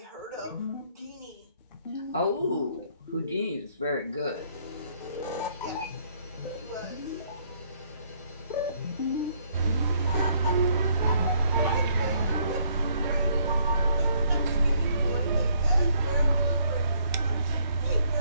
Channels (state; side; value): inverted; both; correlation -0.67